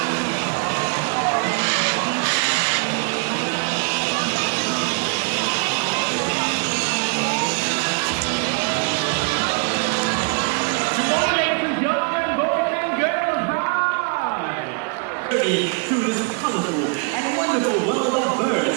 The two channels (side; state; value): left; quieter; 35.4 dB